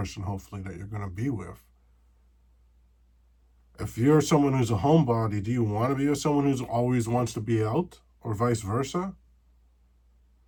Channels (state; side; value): identical; both; correlation 1.00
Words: hopefully, that you're gonna be with. If you're someone who's a homebody, do you want to be with someone who always wants to be out, or vice versa?